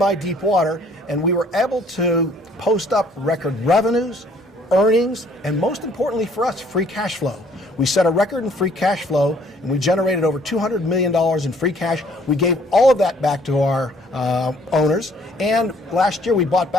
deep water, and we were able to post up record revenues, earnings, and most importantly for us, free cash flow. We set a record in free cash flow, and we generated over $200 million in free cash. We gave all of that back to our owners, and last year we bought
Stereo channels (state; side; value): normal; both; correlation 0.60